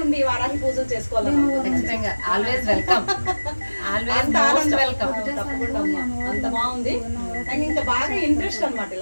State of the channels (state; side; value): inverted; both; correlation -1.00